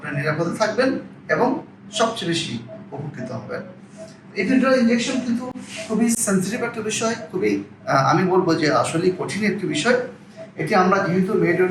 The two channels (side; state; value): both; identical; correlation 1.00